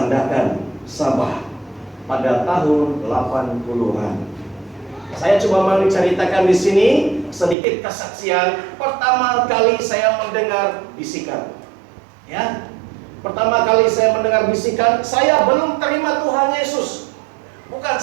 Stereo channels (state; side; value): drops out; left; at 7.6 s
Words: Sabah pada tahun 80-an. Saya coba menceritakan di sini sedikit kesaksian pertama kali saya mendengar bisikan. Ya. Pertama kali saya mendengar bisikan, saya belum terima Tuhan Yesus. Bukan